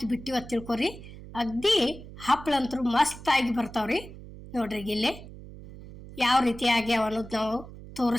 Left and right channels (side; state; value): right; noise; hum, 15 dB below the sound